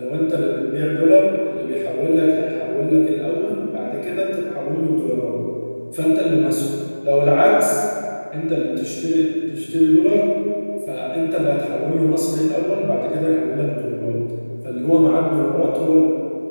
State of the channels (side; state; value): both; inverted; correlation -1.00